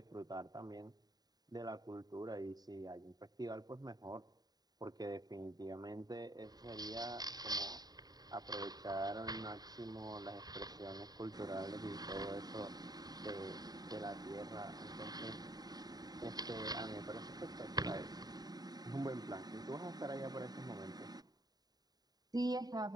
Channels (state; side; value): late; left; 0.19 ms